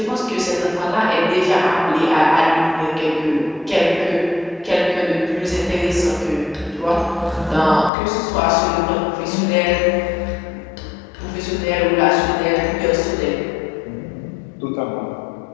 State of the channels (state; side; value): drops out; right; at 7.9 s